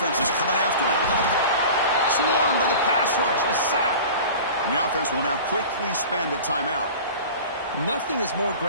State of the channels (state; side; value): inverted; both; correlation -0.38